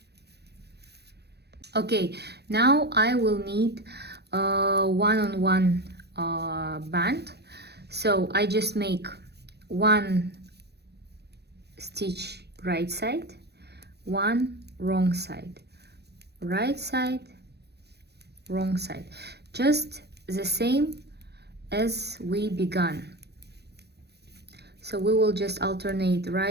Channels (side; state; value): left; late; 0.48 ms